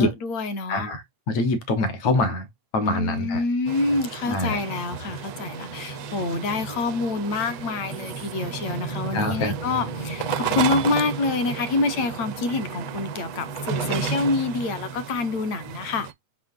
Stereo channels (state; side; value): late; right; 8.5 ms